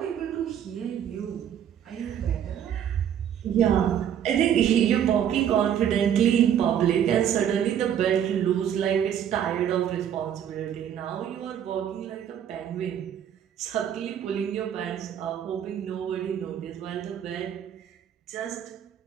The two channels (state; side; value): quieter; left; 9.4 dB